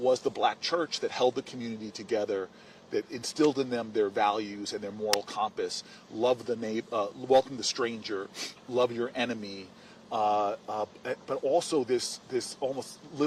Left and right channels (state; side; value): identical; both; correlation 1.00